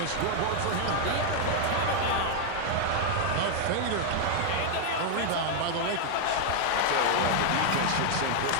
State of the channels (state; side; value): different; both; correlation 0.00